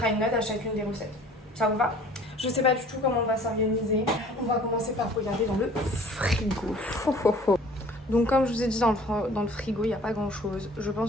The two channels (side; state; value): both; normal; correlation 0.50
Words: une note à chacune des recettes. Ça vous va? Je sais pas du tout comment on va s'organiser. On va commencer par regarder dans le frigo. Donc comme je vous ai dit, dans le frigo, il n'y a pas grand chose. Je